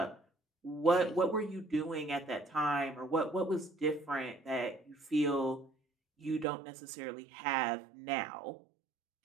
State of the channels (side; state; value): left; drops out; at 6.5 s